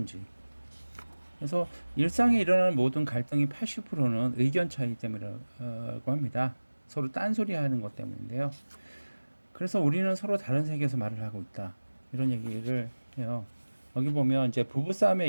그래서 일상에 일어나는 모든 갈등이 80%는 의견 차이 때문이라고 합니다. 서로 딴소리 하는 것 때문인데요. 그래서 우리는 서로 다른 세계에서 말을 하고 있다. 이런 얘기를 해요. 여기 보면 이제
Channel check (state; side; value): inverted; both; correlation -1.00